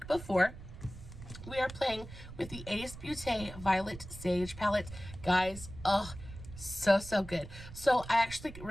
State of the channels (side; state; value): right; noise; rumble, 13 dB below the sound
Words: before. We are playing with the Beaute Violet Sage palette. Guys, oh, so good. So I actually